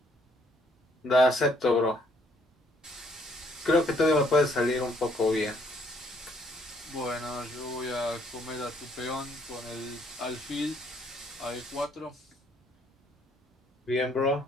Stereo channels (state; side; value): normal; both; correlation 0.66